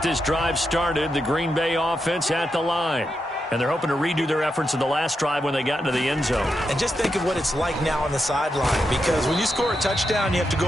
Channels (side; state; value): both; normal; correlation 0.85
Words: this drive started. The Green Bay offense at the line. And they're hoping to redo their efforts in the last drive when they got into the end zone. And just think of what it's like now on the sideline. Because when you score a touchdown, you have to